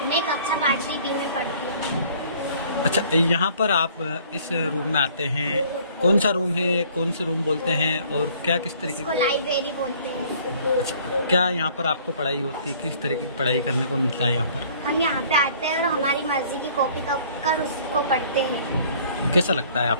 मैं कक्षा 5वीं डी में पढ़ती हूँ। अच्छा, यहाँ पर आप इस रूम में आते हैं, कौन सा रूम है, कौन से रूम बोलते हैं और क्या किस तरीके इसको लाइब्रेरी बोलते हैं। अच्छा, क्या यहाँ पर आपको पढ़ाई होती है? किस तरीके की पढ़ाई करने को मिलता है यहाँ पर? हम यहाँ पे आते हैं और हमारी मर्जी की कॉपी कर उसको पढ़ते हैं। कैसा लगता है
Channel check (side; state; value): both; inverted; correlation -0.56